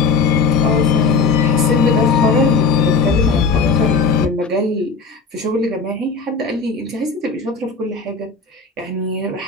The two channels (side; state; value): right; quieter; 4.6 dB